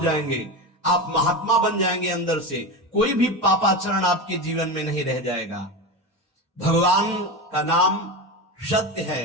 आप महात्मा बन जाएंगे अंदर से, कोई भी पापाचरण आपके जीवन में नहीं रह जाएगा। भगवान का नाम सत्य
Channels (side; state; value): both; normal; correlation 0.21